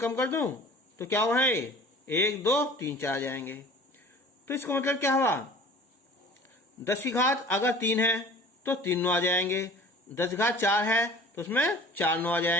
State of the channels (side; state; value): both; normal; correlation 0.45